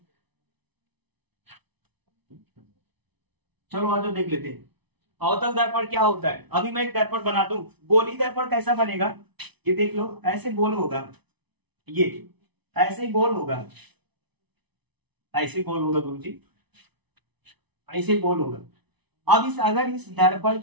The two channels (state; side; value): late; left; 0.99 ms